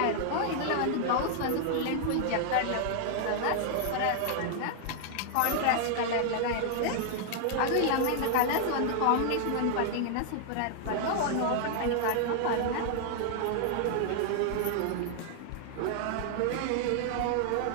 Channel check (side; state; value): both; different; correlation -0.01